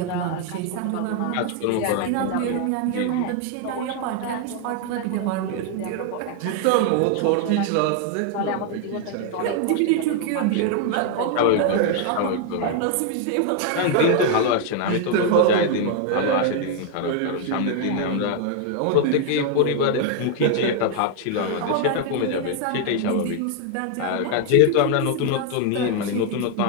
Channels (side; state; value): both; different; correlation 0.00